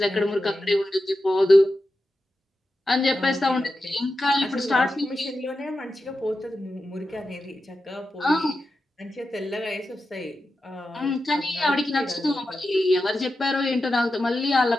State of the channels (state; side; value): normal; both; correlation 0.91